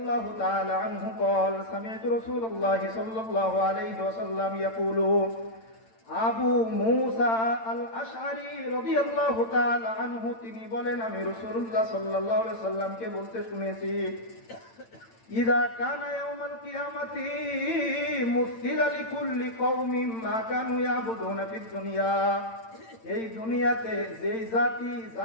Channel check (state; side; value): late; right; 8.9 ms